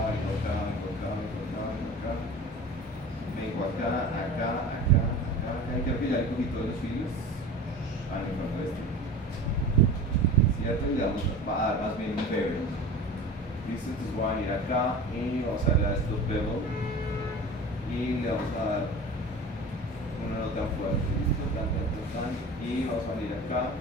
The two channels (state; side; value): normal; both; correlation 0.36